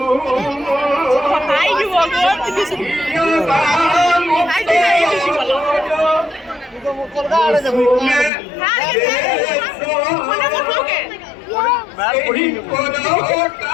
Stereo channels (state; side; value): drops out; right; at 8.3 s